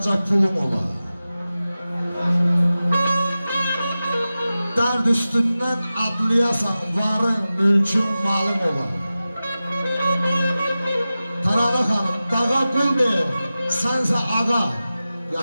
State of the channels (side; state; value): both; inverted; correlation -0.95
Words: pulum ola. Dərd üstündən adlayasan, varın, mülkün, malın ola. Taralı xanım, dağa qul deyir, sənsə ağa,